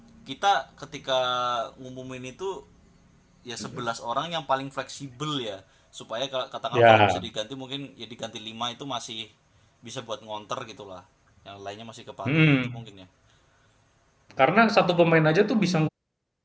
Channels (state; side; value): identical; both; correlation 1.00